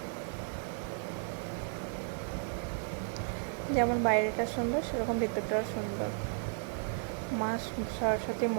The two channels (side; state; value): left; silent; 55 dB below the other